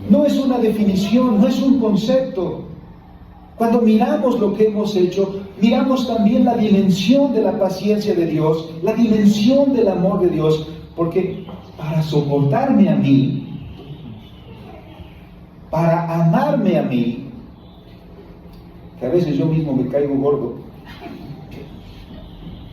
No es una definición, no es un concepto. Cuando miramos lo que hemos hecho, miramos también la dimensión de la paciencia de Dios, la dimensión del amor de Dios, porque para soportarme a mí, para amarme a mí, que a veces yo mismo me caigo gordo,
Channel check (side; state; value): both; identical; correlation 1.00